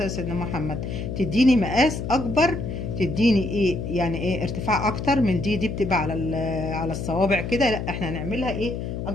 على سيدنا محمد تديني مقاس اكبر، تديني ايه يعني ايه ارتفاع اكتر من دي بتبقى على على الصوابع كده، لا احنا هنعملها ايه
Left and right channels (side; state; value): left; noise; hum, 5 dB below the sound